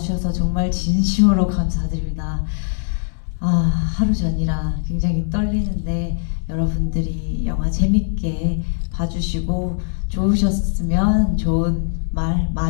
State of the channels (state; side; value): silent; right; 65 dB below the other